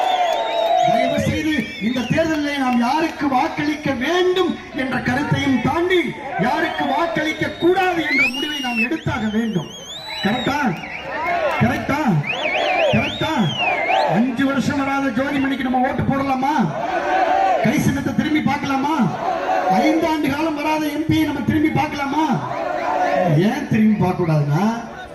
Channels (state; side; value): identical; both; correlation 1.00